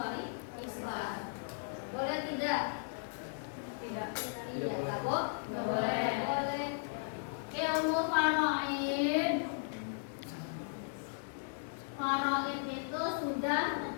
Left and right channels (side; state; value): right; silent; digital silence